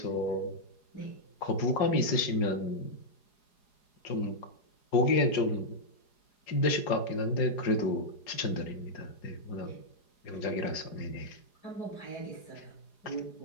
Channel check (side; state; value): right; late; 4.8 ms